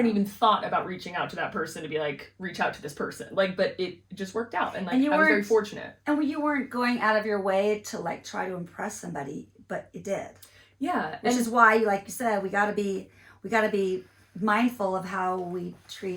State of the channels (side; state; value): both; identical; correlation 1.00